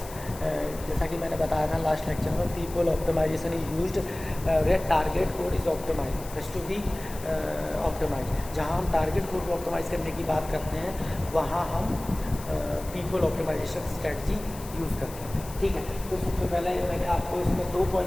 जैसा कि मैंने बताया था लास्ट लेक्चर में, peephole optimization is used where target code is optimized, has to be optimized. जहाँ हम target code को optimise करने की बात करते हैं वहाँ हम peephole optimization strategy यूज़ करते हैं. ठीक है, तो सबसे पहले मैंने आपको इसमें 2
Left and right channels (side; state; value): left; noise; hiss, 16 dB below the sound